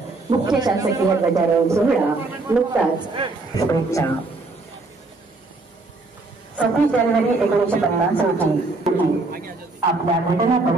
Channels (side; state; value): left; quieter; 3.4 dB